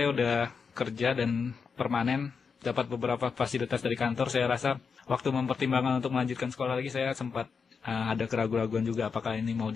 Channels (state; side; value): quieter; right; 5.6 dB